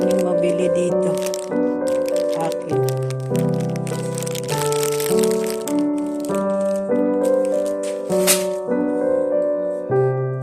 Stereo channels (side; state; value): both; identical; correlation 1.00